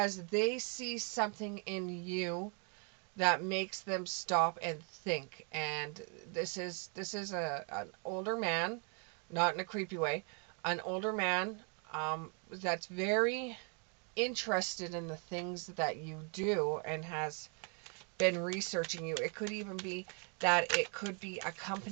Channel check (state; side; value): quieter; left; 38.7 dB